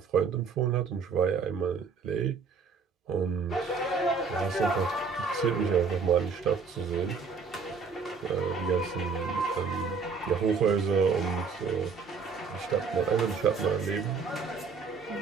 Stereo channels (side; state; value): left; quieter; 5.2 dB